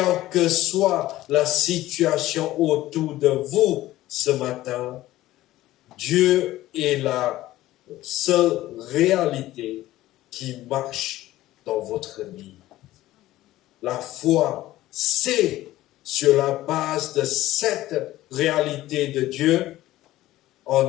que soit la situation autour de vous ce matin, Dieu est la seule réalité qui marche dans votre vie. La foi, c'est sur la base de cette réalité de Dieu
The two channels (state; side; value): quieter; right; 15.8 dB